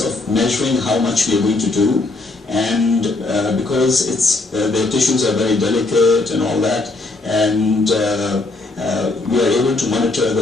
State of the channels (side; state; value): right; quieter; 3.2 dB